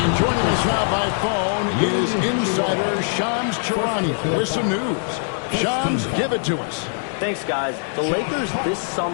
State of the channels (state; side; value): silent; right; 60 dB below the other